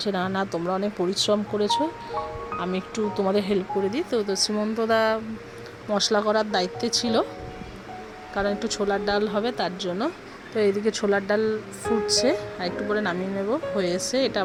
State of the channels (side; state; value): both; identical; correlation 1.00